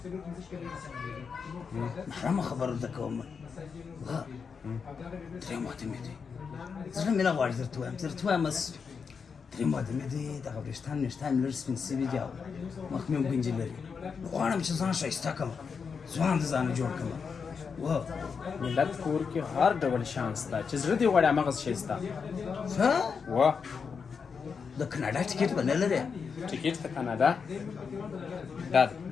محرمه خبره درته کوم درېیم وخت مې دی زړه مې نه غواړي درته ووایم درېیم وخت مې دی دغه وریښتان مې لږ سپین سوي دي او مخ مې هم ګنجې لري غواړم چې ځان ښایسته کړم ځوان د ځانه جوړ کړم ملت کور کې هر ډول شان شته چې زړه دې غواړي هماغسې شی شته وا د کاناډا ټکټ به نه لرې ټکټ د کاناډا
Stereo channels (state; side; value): quieter; right; 5.8 dB